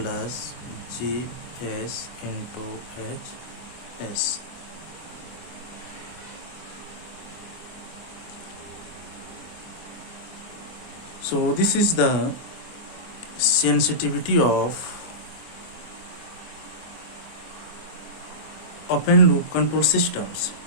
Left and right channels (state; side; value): late; right; 25 ms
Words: Gs into Hs. So this is the sensitivity of open loop control systems.